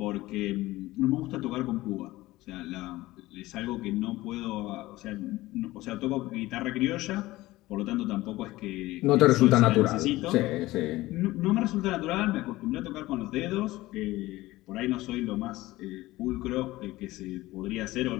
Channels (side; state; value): right; quieter; 18.1 dB